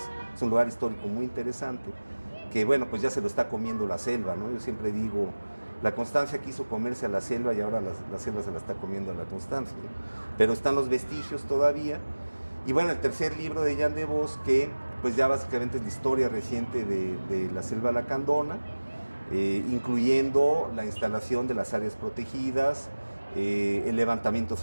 Es un lugar histórico muy interesante que, bueno, pues ya se lo está comiendo la selva, ¿no? Yo siempre digo, la constancia quiso comerse a la selva y ahora la selva se la está comiendo a la constancia, ¿no? Pero están los vestigios todavía. Y bueno, el tercer libro de Jan de Vos, que pues ya básicamente es la historia reciente de la selva lacandona, incluyendo la instalación de las áreas protegidas, el levantamiento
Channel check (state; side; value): inverted; both; correlation -1.00